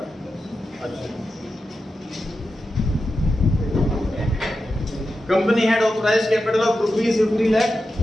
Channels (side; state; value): both; normal; correlation 0.90